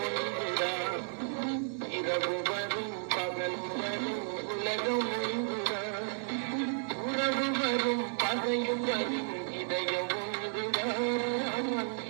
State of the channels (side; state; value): left; silent; digital silence